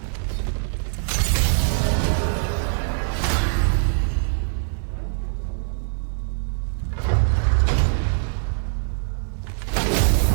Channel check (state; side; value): silent; left; digital silence